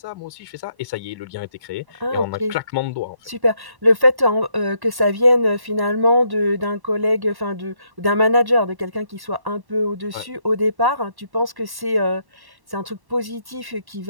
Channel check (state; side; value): late; left; 1.1 ms